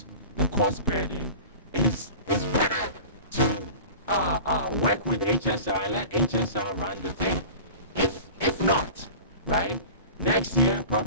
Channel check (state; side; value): inverted; both; correlation -0.38